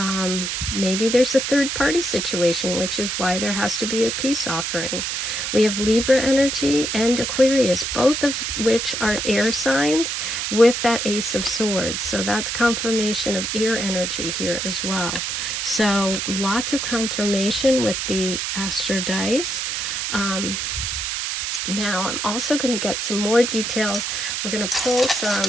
Maybe there's a third party situation, which is why there has to be a peace offering. We have Libra energy and Aquarius, both of which are air signs with that Ace of Swords. So that's confirmation of air energy here as well. So lots of confirmation with the APHRODITE. Now I'm also going to get some more details. We're going to pull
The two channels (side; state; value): right; noise; hiss, 2 dB below the sound